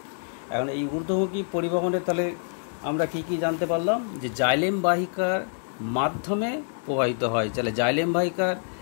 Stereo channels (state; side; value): silent; right; digital silence